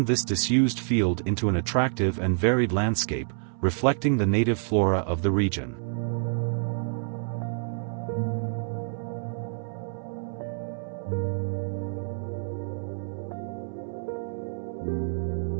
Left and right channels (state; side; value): silent; left; 59 dB below the other